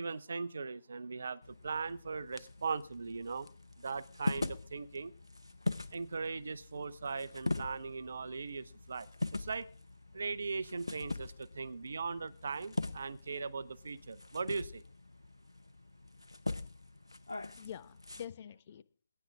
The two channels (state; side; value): inverted; both; correlation -0.90